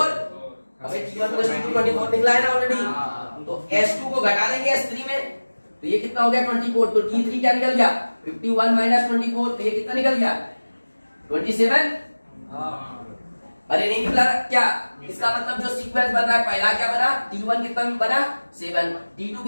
अबे T1 प्लस T2 24 निकला है ना ऑलरेडी, तो S2 को घटा देंगे S3 में, तो ये कितना हो गया 24, तो T3 क्या निकल गया 51 माइनस 24, तो ये कितना निकल गया 27, अरे नहीं निकला क्या, इसका मतलब जो सीक्वेंस बन रहा है पहला क्या बना T1 कितना बना 7, T2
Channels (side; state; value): both; inverted; correlation -1.00